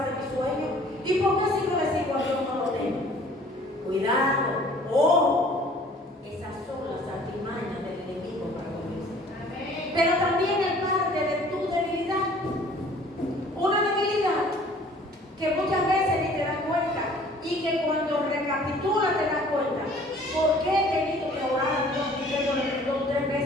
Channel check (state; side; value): normal; both; correlation 0.52